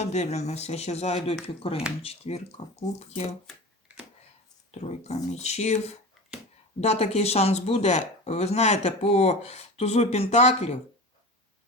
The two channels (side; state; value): both; normal; correlation 0.31